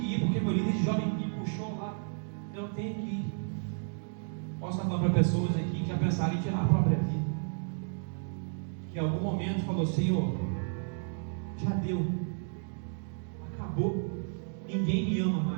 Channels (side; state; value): left; silent; 56 dB below the other